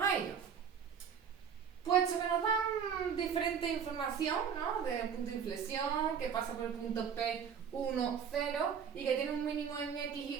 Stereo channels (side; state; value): left; quieter; 7.4 dB